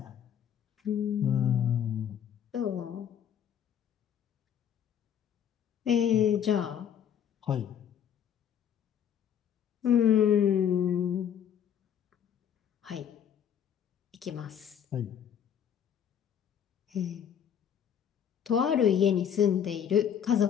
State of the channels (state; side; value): quieter; right; 8.9 dB